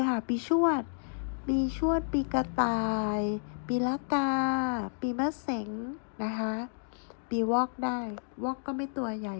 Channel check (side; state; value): right; silent; digital silence